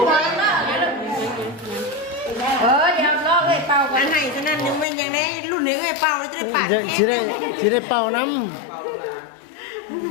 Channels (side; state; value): right; drops out; at 4.9 s